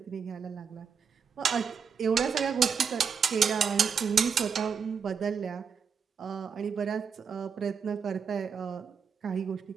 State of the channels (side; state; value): left; quieter; 6.4 dB